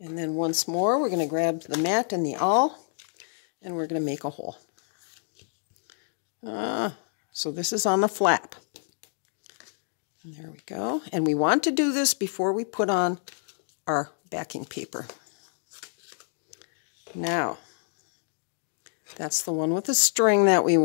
then once more, we're going to grab the mat and the awl, and we're going to make a hole. So this is on the flap. And there we go. And we want to do this before we put on our backing paper. Now, that's the one with the string that we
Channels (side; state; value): right; silent; digital silence